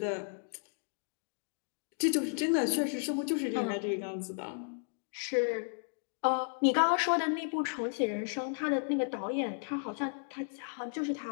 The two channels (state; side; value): silent; right; digital silence